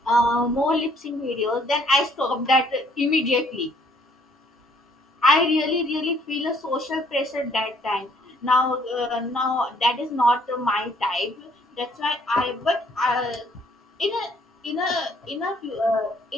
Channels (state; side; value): normal; both; correlation 0.63